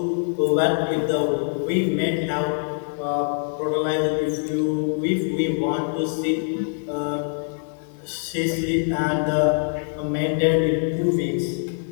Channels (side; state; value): right; silent; 63 dB below the other